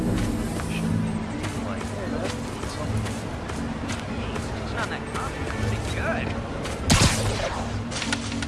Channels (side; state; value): both; identical; correlation 1.00